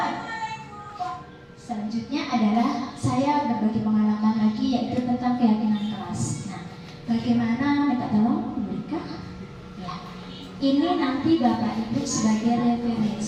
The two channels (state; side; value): identical; both; correlation 1.00